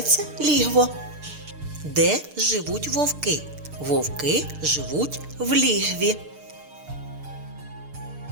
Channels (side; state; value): left; late; 6.7 ms